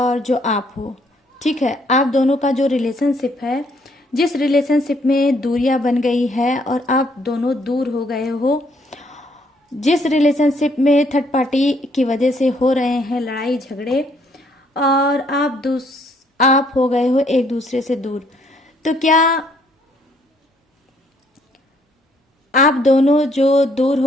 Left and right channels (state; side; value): normal; both; correlation 0.67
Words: जो आप हो, ठीक है, आप दोनों का जो रिलेशनशिप है, जिस रिलेशनशिप में दूरियां बन गई है और आप दोनों दूर हो गए हो, जिस रिलेशनशिप में थर्ड पार्टी की वजह से हो रहे हैं लड़ाई झगड़े और आप हो गए हो एक दूसरे से दूर, तो क्या आप दोनों जो दूर